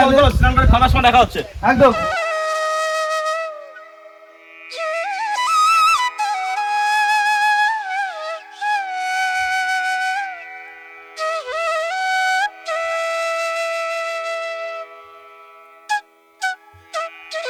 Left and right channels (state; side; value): identical; both; correlation 1.00